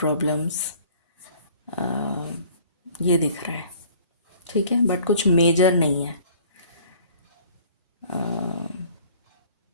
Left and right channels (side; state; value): both; inverted; correlation -0.52